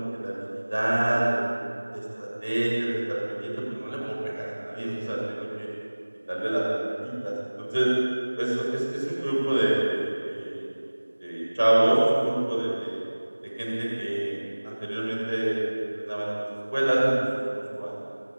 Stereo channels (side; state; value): both; inverted; correlation -1.00